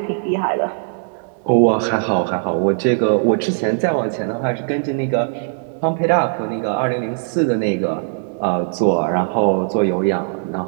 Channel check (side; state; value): left; silent; 63 dB below the other